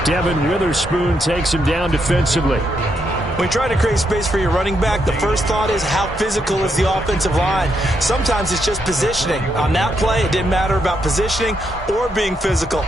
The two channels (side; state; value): both; normal; correlation 0.79